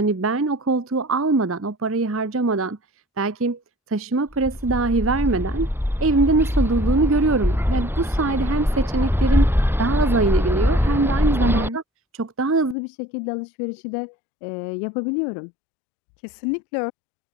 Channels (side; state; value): right; drops out; at 12.8 s